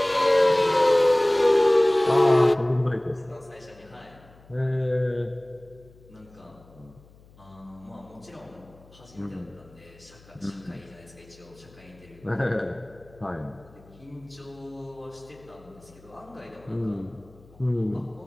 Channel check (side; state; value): left; noise; hum, 25 dB below the sound